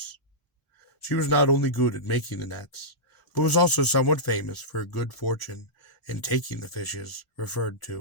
She was not only good at making the nets, but was also somewhat famous for her good fortune in taking the fishes referred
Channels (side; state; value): both; normal; correlation -0.14